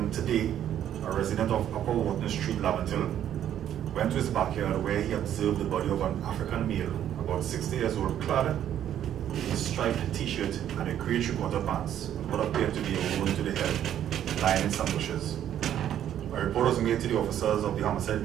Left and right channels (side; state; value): left; quieter; 10.6 dB